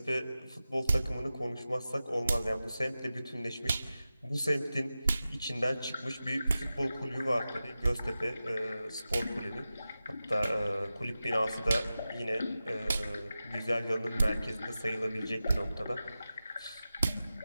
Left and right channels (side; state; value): both; inverted; correlation -0.94